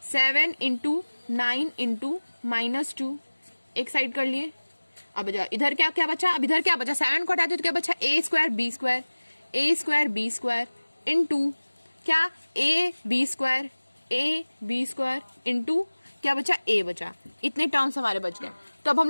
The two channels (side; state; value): both; inverted; correlation -1.00